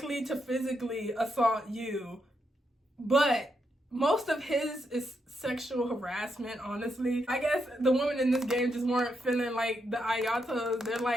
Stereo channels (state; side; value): normal; both; correlation 0.81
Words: to physically assault you, but most of his is sexual harassment, honestly. I guess the women in this game just weren't feeling like the Ayatos. They're